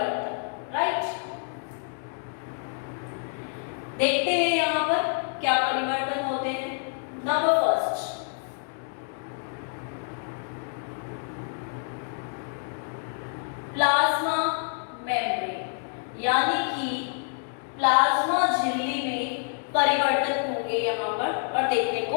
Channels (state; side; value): silent; right; 60 dB below the other